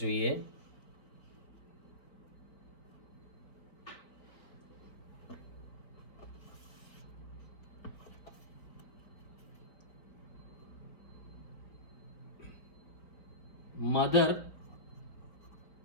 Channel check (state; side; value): late; right; 4.2 ms